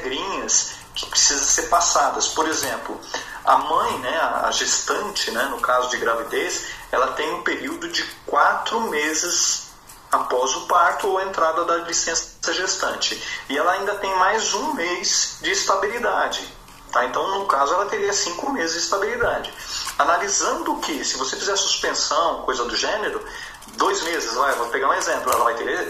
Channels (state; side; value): identical; both; correlation 1.00